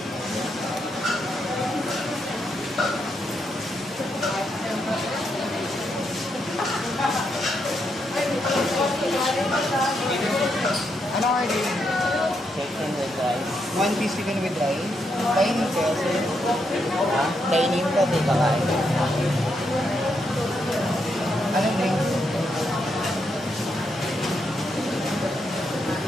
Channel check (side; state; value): both; normal; correlation 0.80